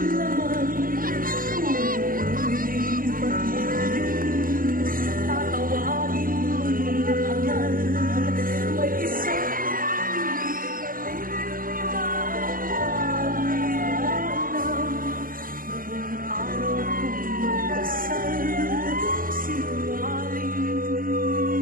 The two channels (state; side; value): late; left; 0.41 ms